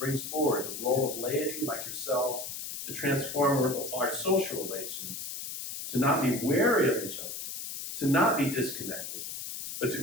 forward the role of laity like yourselves to transform our social relations, to not be wary of each other, to not be disconnected, but to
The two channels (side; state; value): left; noise; hiss, 7 dB below the sound